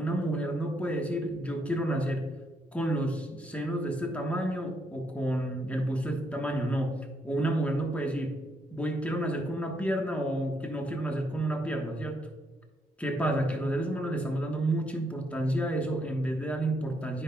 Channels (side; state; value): both; normal; correlation 0.75